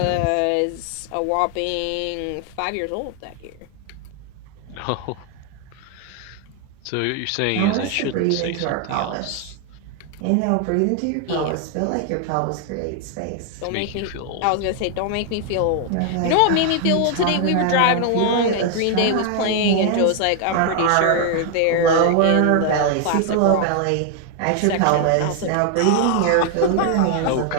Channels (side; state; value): both; different; correlation 0.00